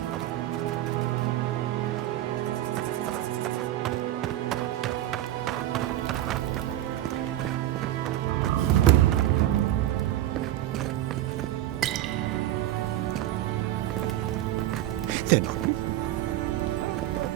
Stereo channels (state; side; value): quieter; left; 13.7 dB